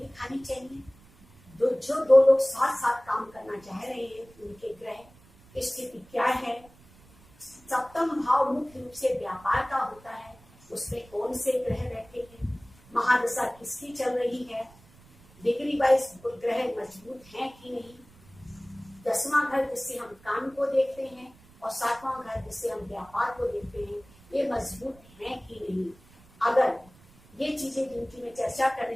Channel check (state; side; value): noise; right; rumble, 26 dB below the sound